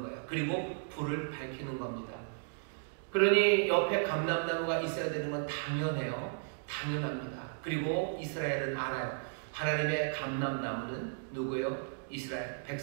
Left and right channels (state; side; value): silent; left; digital silence